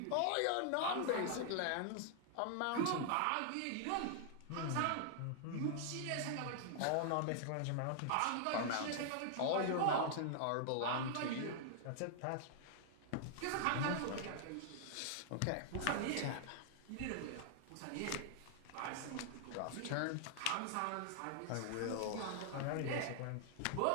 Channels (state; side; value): different; both; correlation 0.00